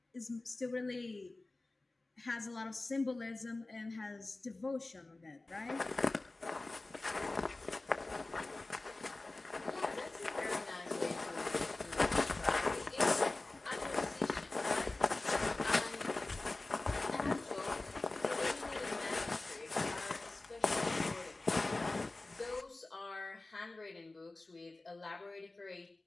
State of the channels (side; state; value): right; quieter; 3.1 dB